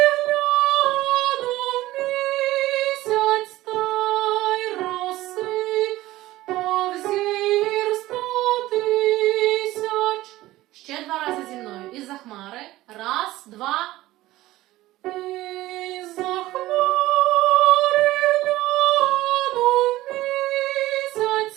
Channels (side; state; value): left; quieter; 16.7 dB